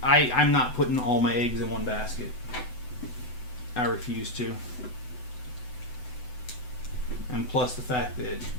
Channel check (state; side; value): late; right; 8.0 ms